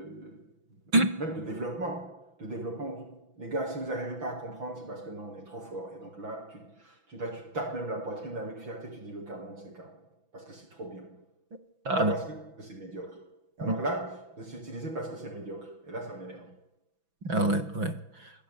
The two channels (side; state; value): left; late; 6.0 ms